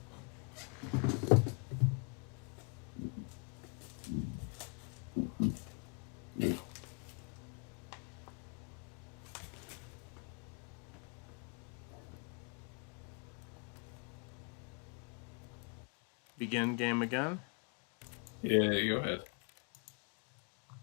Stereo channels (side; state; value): right; quieter; 36.9 dB